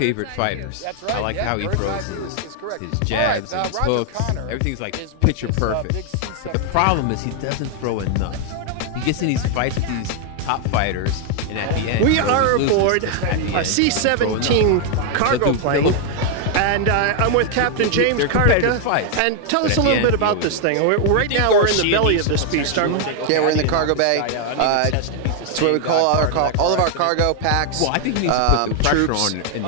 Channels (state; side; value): different; both; correlation 0.00